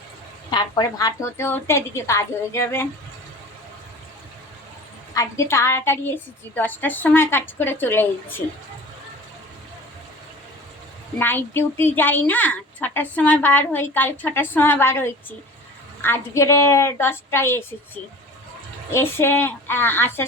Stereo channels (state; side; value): normal; both; correlation 0.40